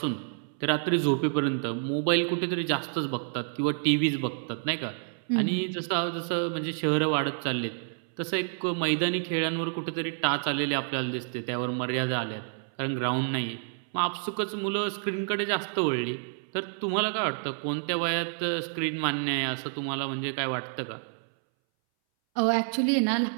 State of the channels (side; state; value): left; silent; 59 dB below the other